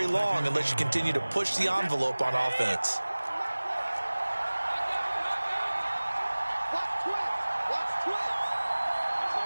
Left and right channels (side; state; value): both; inverted; correlation -1.00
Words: long unless you continue to push the envelope on offense.